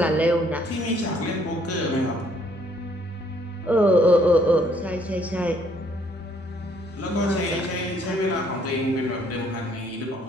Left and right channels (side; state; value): both; normal; correlation 0.65